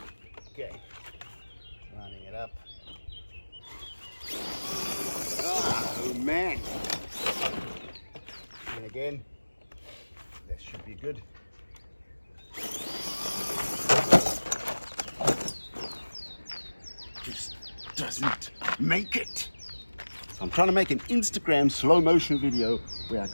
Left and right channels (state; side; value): inverted; both; correlation -1.00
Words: Okay. Lining it up. Oh, man. And again, that should be good. Just doesn't make it. So I'm trying to make an Instagram slow motion video where I